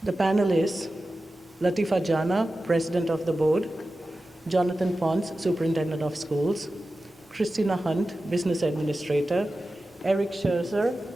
The panel is Latifa Jana, President of the Board, Jonathan Pons, Superintendent of Schools, Christina Hunt, Business Administrator, Eric Scherzer,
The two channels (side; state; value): both; normal; correlation 0.94